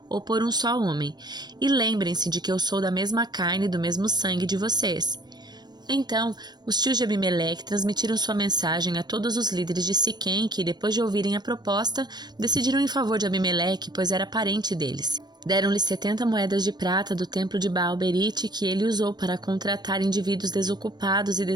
ou por um só homem, e lembrem-se de que eu sou da mesma carne e do mesmo sangue de vocês. Então, os tios de Abimeleque transmitiram sua mensagem a todos os líderes de Siquém que, depois de ouvirem a proposta, decidiram em favor de Abimeleque, pois era parente deles. Deram-lhe 70 moedas de prata do templo de Baal-Berite que ele usou para contratar indivíduos desocupados e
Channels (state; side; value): late; left; 0.20 ms